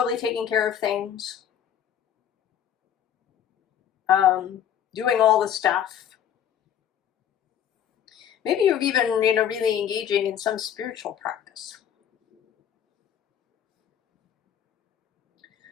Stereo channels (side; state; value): right; quieter; 9.5 dB